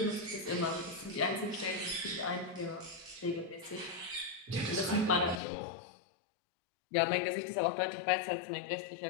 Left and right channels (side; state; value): right; drops out; at 5.4 s